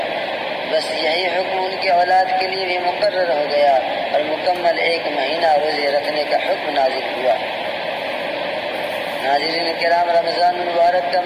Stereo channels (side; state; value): both; identical; correlation 1.00